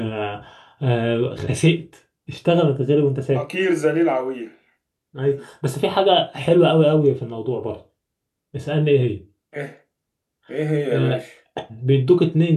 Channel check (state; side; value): identical; both; correlation 1.00